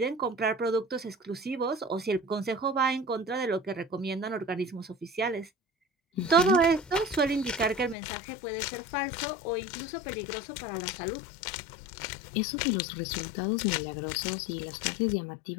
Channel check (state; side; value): drops out; right; at 8.0 s